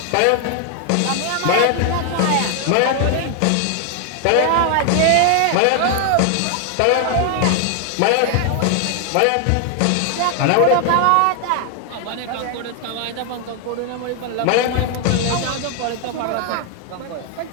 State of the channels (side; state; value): both; different; correlation 0.00